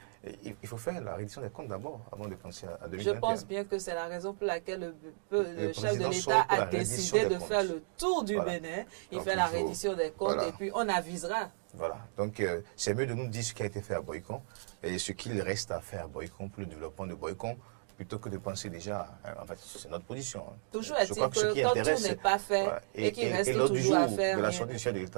Il faut faire la réédition des comptes d'abord, avant de penser à 2021. Je pense bien que c'est la raison pour laquelle le chef de l'État a décidé de faire le tour du Bénin. Il fait la reddition des comptes et puis on avisera. Voilà. Donc, c'est mieux de nous dire ce qui a été fait à Boyko et ce qu'il reste à faire à Boyko pour le développement de Boyko, plutôt que de penser déjà, en fait, c'est notre position. Toujours est-il que quand tout n'est pas fait et qu'il reste toujours à faire. De la sortie du chef de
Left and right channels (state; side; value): silent; left; digital silence